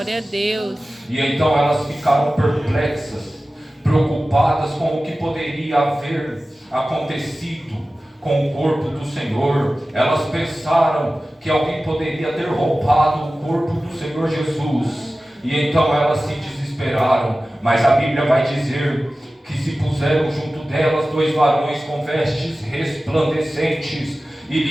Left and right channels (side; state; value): both; normal; correlation 0.96